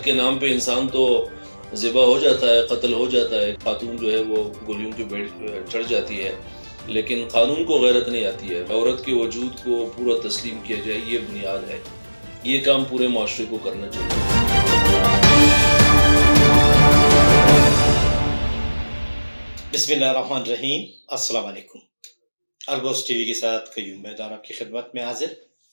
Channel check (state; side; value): inverted; both; correlation -1.00